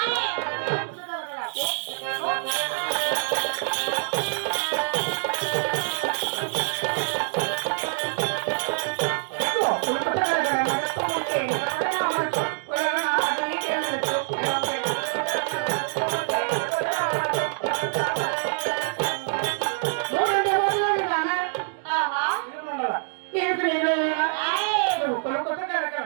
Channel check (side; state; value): left; silent; 61 dB below the other